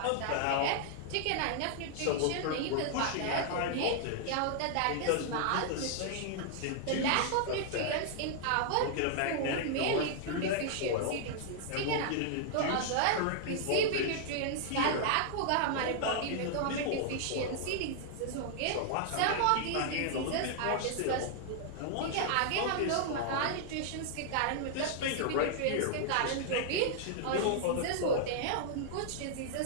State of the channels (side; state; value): both; different; correlation -0.01